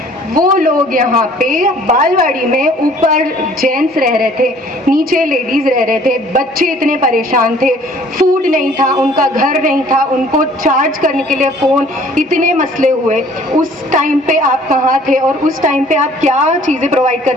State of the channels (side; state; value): both; normal; correlation 0.55